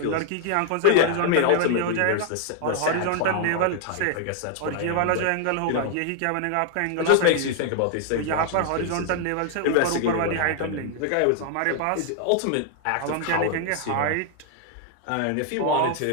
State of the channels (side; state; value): both; different; correlation 0.00